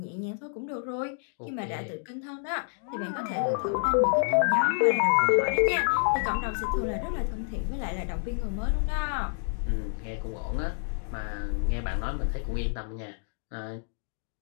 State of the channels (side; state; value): right; silent; digital silence